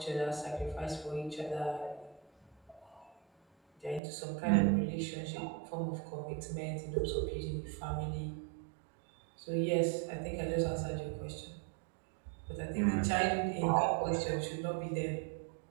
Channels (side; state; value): left; drops out; at 4.0 s